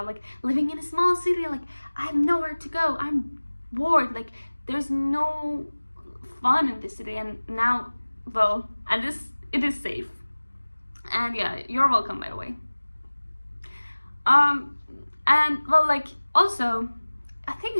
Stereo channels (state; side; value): inverted; both; correlation -1.00